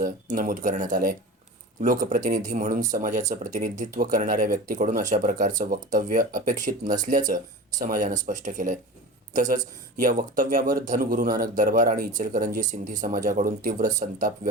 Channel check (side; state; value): both; normal; correlation 0.32